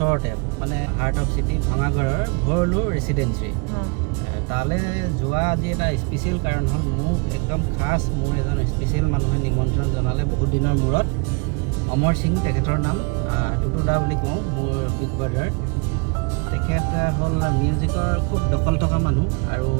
মানে হাৰ্ট অফ চিটি ভঙাগড়ৰ ভৰলু ৰেচিডেঞ্চি তালৈ যোৱা আজি এটা স্পেচিয়েল কাৰণ হ'ল মোক একদম খাছ মোৰ এজন স্পেচিয়েল মানুহে নিমন্ত্ৰণ জনালে বহুত দিনৰ মূৰত অমৰ সিং তেখেতৰ নাম টুটু দা বুলি কওঁ মোৰ বিগ ব্ৰাদাৰ তেখেত হ'ল মিউজিকৰ খুব দখল থকা মানুহ আৰু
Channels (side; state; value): left; quieter; 32.1 dB